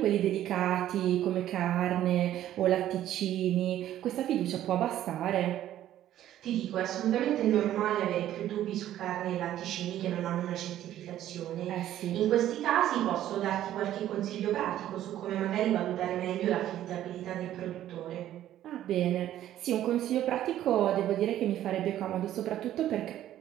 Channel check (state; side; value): quieter; left; 12.4 dB